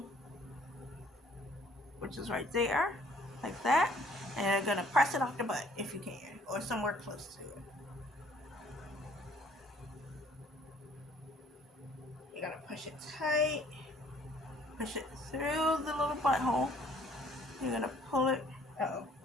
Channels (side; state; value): both; normal; correlation 0.59